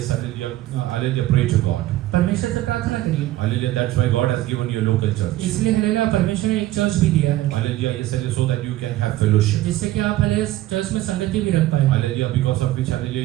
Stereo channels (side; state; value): left; quieter; 15.5 dB